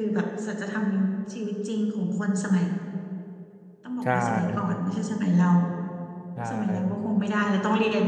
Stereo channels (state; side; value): identical; both; correlation 1.00